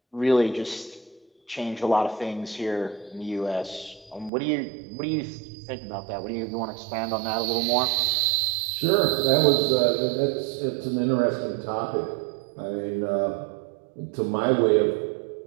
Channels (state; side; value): drops out; left; at 4.3 s